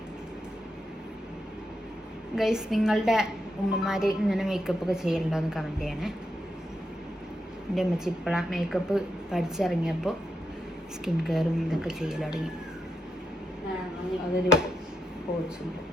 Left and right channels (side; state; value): both; normal; correlation 0.83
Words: ഗൈസ്, നിങ്ങളുടെ ഉമ്മമാർ ഇങ്ങനെ മേക്കപ്പ് ഒക്കെ ചെയ്യലുണ്ടോ എന്ന് കമൻറ്റ് ചെയ്യണേ. എൻ്റെ അമ്മച്ചി ഇപ്പോഴാണ് മേക്കപ്പ് പഠിച്ചിറങ്ങിയപ്പോൾ സ്കിൻ കെയറും ഇതൊക്കെ ചെയ്യൽ തുടങ്ങി. അതൊരു കോഴ്സുണ്ട്.